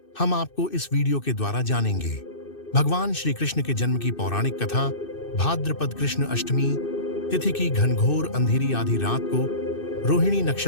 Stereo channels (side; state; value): right; late; 2.6 ms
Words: हम आपको इस वीडियो के द्वारा जानेंगे भगवान श्री कृष्ण के जन्म की पौराणिक कथा। भाद्रपद कृष्ण अष्टमी तिथि की घनघोर अंधेरी आधी रात को रोहिणी